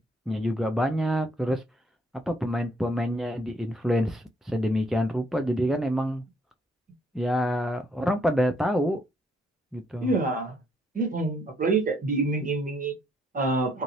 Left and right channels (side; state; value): both; normal; correlation 0.68